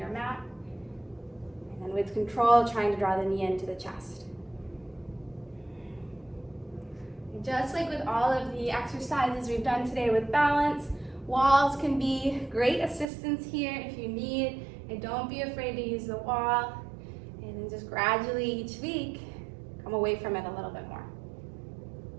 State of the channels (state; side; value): drops out; left; at 13.1 s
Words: mat. And then with control, trying to draw the knee into the chest. And just like with all of the exercises we've done today with balance, walls can be great assistance here if you need. And don't be afraid to use the wall. And then just gradually each week, come away from it a little bit more.